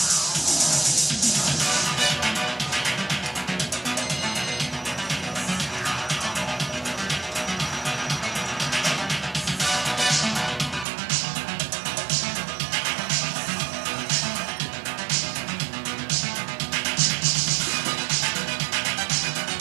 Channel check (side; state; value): left; drops out; at 10.9 s